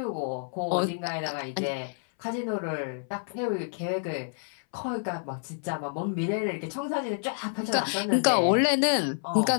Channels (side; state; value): right; silent; 59 dB below the other